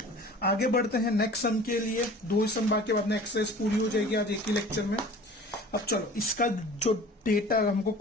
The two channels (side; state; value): both; normal; correlation 0.44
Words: आगे बढ़ते हैं नेक्स्ट सम के लिए। 2 सम बाकी, बाद में एक्सरसाइज पूरी हो जाएगी आज एक ही लेक्चर में। अब चलो इसका जो डेटा हमको